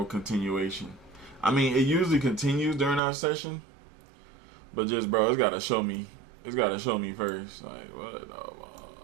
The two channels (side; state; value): left; drops out; at 3.0 s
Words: continuation. I mean, it usually continues during our session, but just, bro, it's gotta show me. It's gotta show me first. Like what?